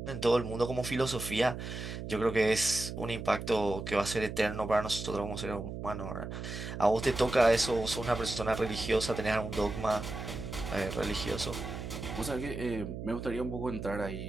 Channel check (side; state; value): right; noise; hum, 7 dB below the sound